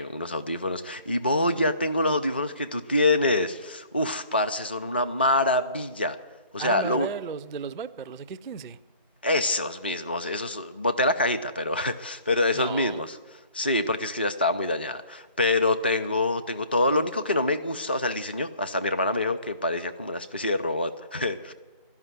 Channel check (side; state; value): both; inverted; correlation -0.52